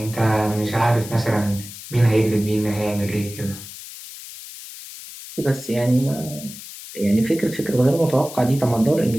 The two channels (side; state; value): left; noise; hiss, 14 dB below the sound